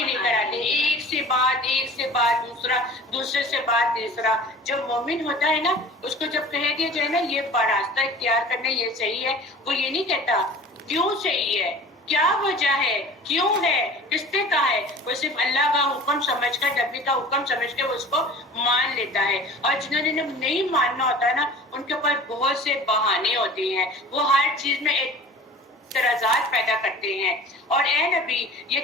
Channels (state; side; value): normal; both; correlation 0.42